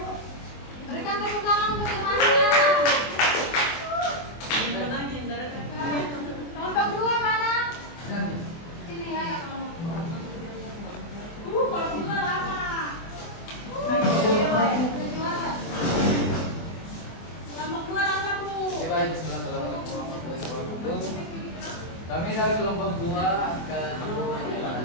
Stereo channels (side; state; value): right; late; 24 ms